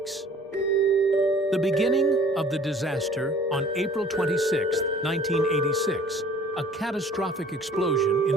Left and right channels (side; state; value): both; normal; correlation 0.52